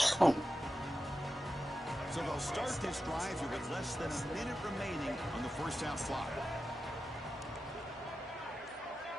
So they'll start this drive here with less than a minute remaining on the first half clock.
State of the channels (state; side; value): normal; both; correlation 0.91